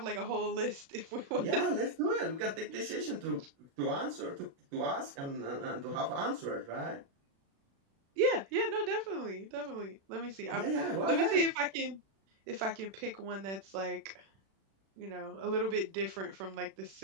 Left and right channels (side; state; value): left; late; 36 ms